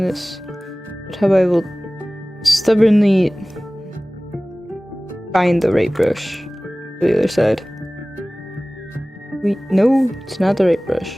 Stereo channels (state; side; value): normal; both; correlation 0.98